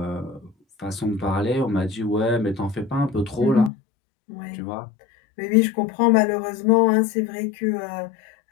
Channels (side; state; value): right; drops out; at 3.7 s